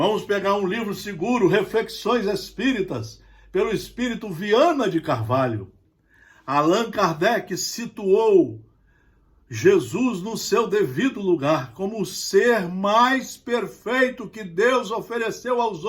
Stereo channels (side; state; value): both; identical; correlation 1.00